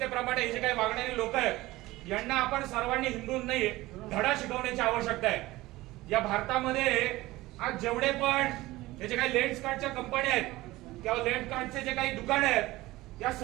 हे जे काही वागणारे लोक आहेत यांना आपण सर्वांनी हिंदूंनी धडा शिकवण्याची आवश्यकता आहे. या भारतामध्ये आज जेवढे पण हे जे काही लेन्स कार्डच्या कंपन्या आहेत किंवा लेन्स कार्डचे जे काही दुकान आहेत या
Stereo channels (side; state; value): left; quieter; 18.6 dB